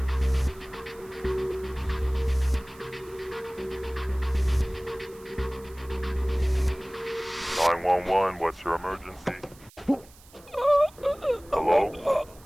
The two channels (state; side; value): noise; right; hiss, 25 dB below the sound